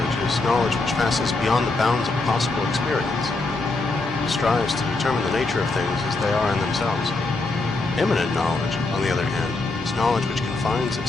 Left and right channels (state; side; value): quieter; right; 3.4 dB